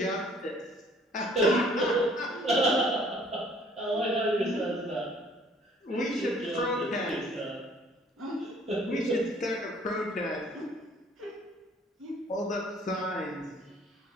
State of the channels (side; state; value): both; normal; correlation 0.58